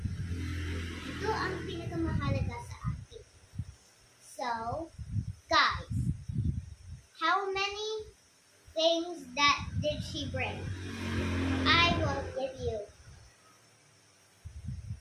Ito ang pinakamahalaga sa akin. So, guys, how many things that did she bring? I will give you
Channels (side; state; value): both; identical; correlation 1.00